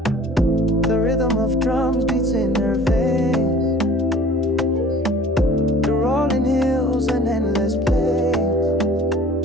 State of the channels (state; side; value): normal; both; correlation 0.49